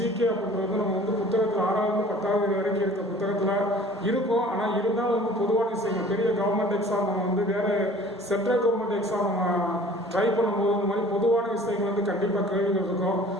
அப்படின்றது வந்து நம்ம வந்து புத்தகத்தில் 6வது 10வது வரைக்கும் இருக்க புத்தகத்தில் இருக்கும். ஆனால் இருந்தாலும் வந்து பொதுவான விஷயங்கள், பெரிய கவர்மெண்ட் எக்ஸாம் நம்ம வந்து வேறு சென்ட்ரல் கவர்மெண்ட் எக்ஸாம் நம்ம ட்ரை பண்ணும்போது இந்த மாதிரி பொதுவான விஷயங்கள் வந்து கண்டிப்பாக கேள்விகள் இருக்கும்.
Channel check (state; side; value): normal; both; correlation 0.48